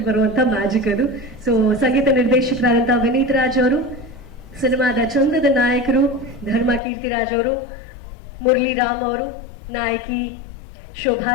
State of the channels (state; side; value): drops out; right; at 6.8 s